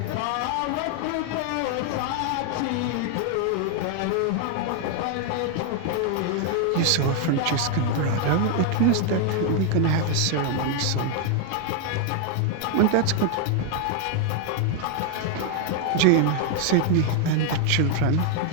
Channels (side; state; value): both; different; correlation 0.00